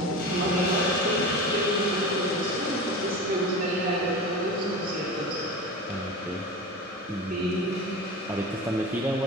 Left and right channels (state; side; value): normal; both; correlation 0.30